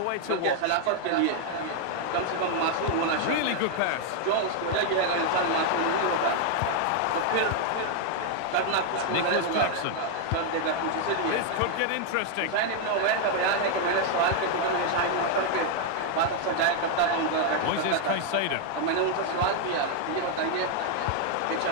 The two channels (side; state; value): both; different; correlation 0.00